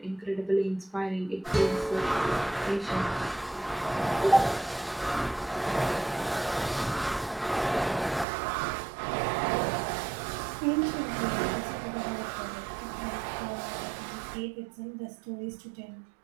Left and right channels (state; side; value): drops out; left; at 8.2 s